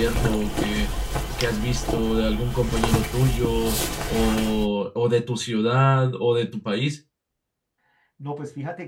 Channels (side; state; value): both; identical; correlation 1.00